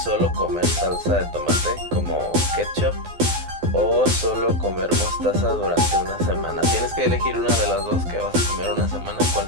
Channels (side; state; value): left; late; 12 ms